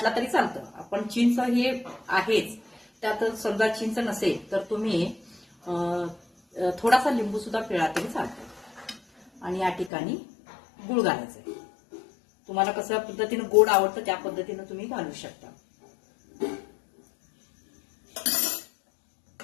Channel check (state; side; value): drops out; right; at 9.9 s